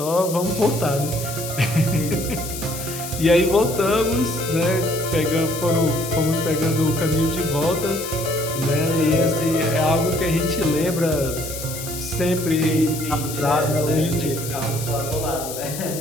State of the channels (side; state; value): left; noise; hiss, 9 dB below the sound